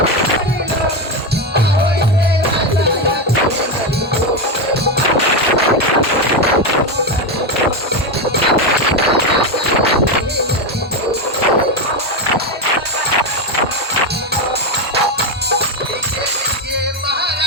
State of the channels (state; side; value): normal; both; correlation 0.10